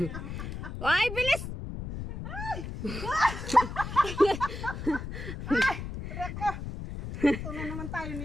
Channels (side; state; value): left; noise; rumble, 7 dB below the sound